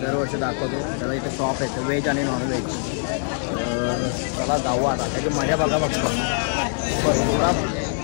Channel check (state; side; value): silent; right; digital silence